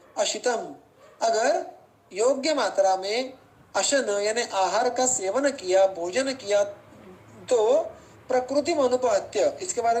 अशितम, अगर योग्य मात्रा में अशन यानी आहार का सेवन किया, भोजन किया, तो प्रकृति अनुपहत्य, इसके बारे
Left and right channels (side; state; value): both; identical; correlation 1.00